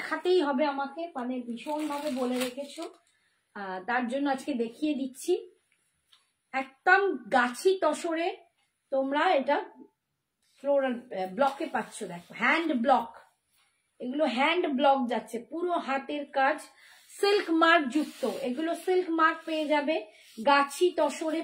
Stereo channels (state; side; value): identical; both; correlation 1.00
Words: হবে আমাকে, মানে ভীষণ ভাবে বলে রেখেছো, তার জন্য আজকে দেখিয়ে দিচ্ছি। একদম গাছি তসরে তোমরা এটা ফ্লোরাল ব্লকে পাচ্ছ। দেখো হ্যান্ড ব্লক, এগুলো হ্যান্ড ব্লক যাচ্ছে, পুরো হাতের কাজ, সিল্ক মার্ক যুক্ত। এগুলো সিল্ক মার্ক পেয়ে যাবে, গাছি তসরে